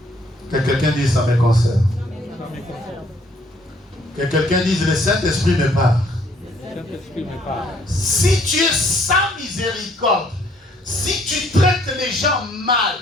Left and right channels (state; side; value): normal; both; correlation 0.64